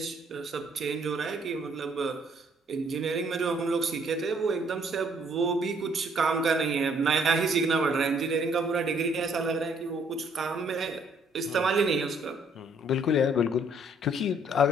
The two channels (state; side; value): normal; both; correlation 0.65